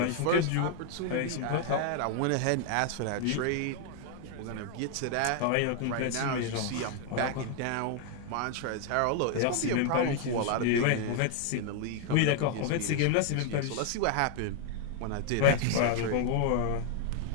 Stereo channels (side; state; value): both; different; correlation 0.00